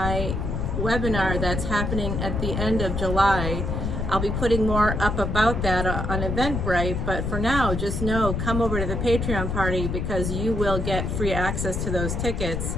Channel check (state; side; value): noise; left; rumble, 2 dB below the sound